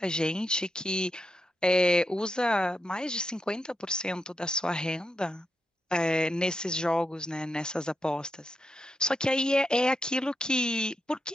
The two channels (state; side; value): normal; both; correlation 0.85